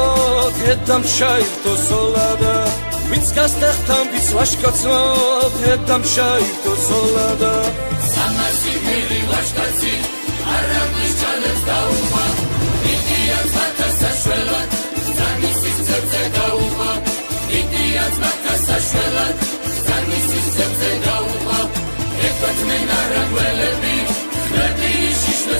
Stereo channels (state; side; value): inverted; both; correlation -1.00